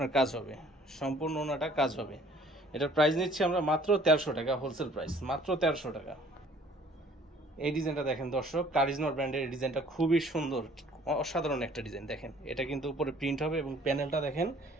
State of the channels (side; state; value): both; normal; correlation 0.55